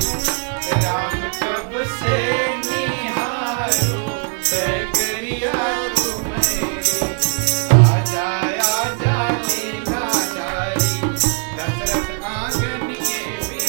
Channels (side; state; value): left; quieter; 36.4 dB